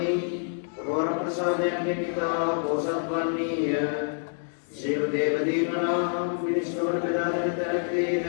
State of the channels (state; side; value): silent; right; digital silence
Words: ඔබ වර ප්‍රසාදයෙන් නිකිතා පෝසත් වන්නීය. සියලු දේව දීමනා මිනිස්සුන්ට බෙදා දෙන තැනකදීද